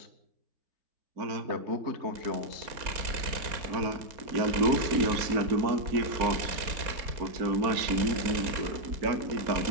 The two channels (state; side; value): late; left; 4.2 ms